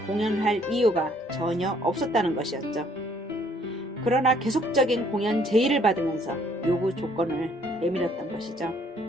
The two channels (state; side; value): normal; both; correlation 0.63